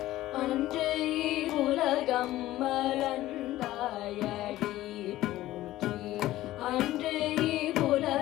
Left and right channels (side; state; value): right; quieter; 15.5 dB